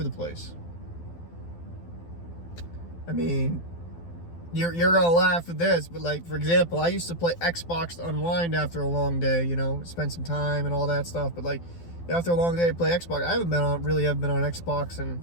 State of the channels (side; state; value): right; late; 12 ms